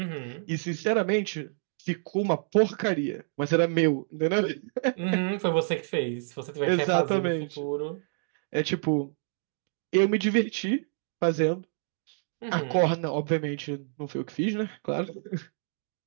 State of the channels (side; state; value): left; silent; digital silence